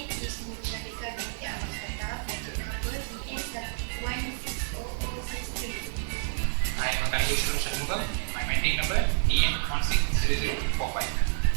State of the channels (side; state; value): left; silent; 58 dB below the other